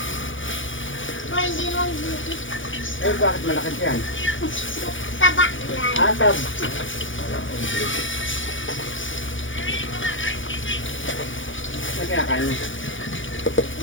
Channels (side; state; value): right; late; 0.56 ms